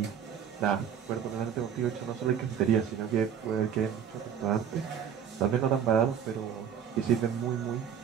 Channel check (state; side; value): quieter; left; 8.3 dB